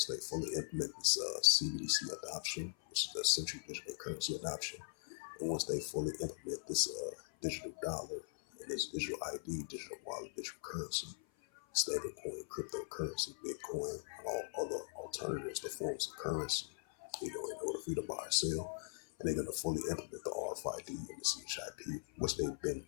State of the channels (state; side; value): silent; right; 51 dB below the other